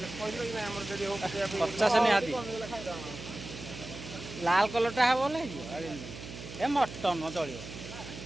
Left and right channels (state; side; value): noise; right; hum, 12 dB below the sound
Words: 50 निहाती लाल कलरटा हे बोले ए मटन चलिए